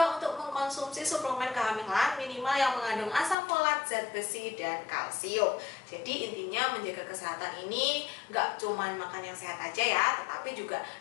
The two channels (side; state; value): right; drops out; at 3.4 s